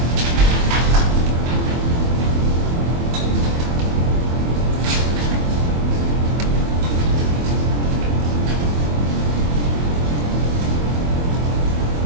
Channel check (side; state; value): left; late; 24 ms